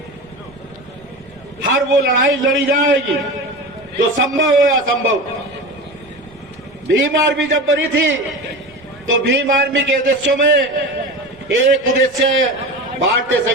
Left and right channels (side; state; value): right; noise; rumble, 26 dB below the sound